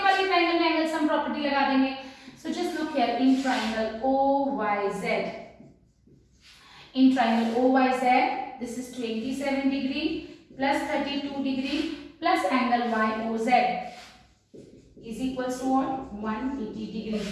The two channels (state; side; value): identical; both; correlation 1.00